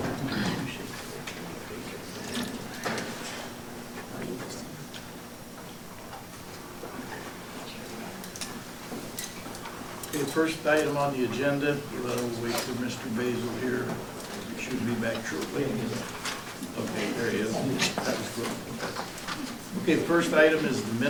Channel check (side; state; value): both; identical; correlation 1.00